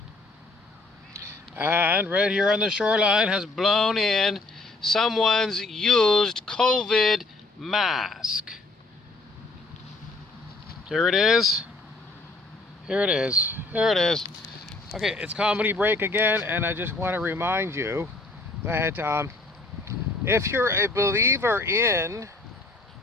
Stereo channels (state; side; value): quieter; right; 3.2 dB